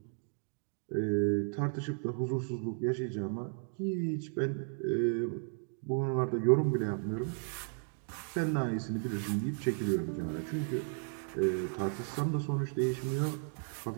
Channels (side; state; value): left; silent; 55 dB below the other